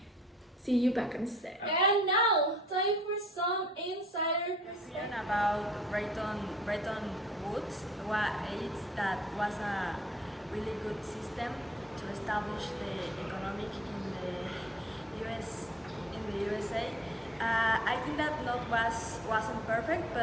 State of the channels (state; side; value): normal; both; correlation 0.57